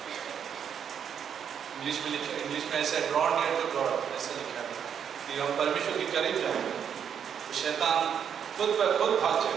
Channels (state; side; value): quieter; left; 8.1 dB